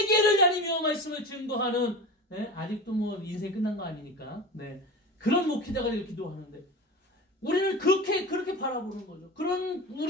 다니며 말씀을 증거하는 아직도 뭐 인생 끝난 거 아니니까 그런 목회자가 기도하는데 우리는 그렇게 바라보는 거죠. 그런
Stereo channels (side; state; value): both; normal; correlation 0.31